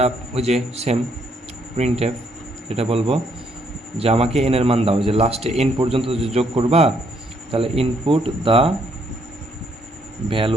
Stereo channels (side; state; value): both; normal; correlation 0.71